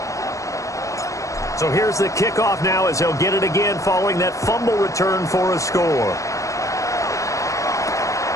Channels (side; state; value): right; late; 0.15 ms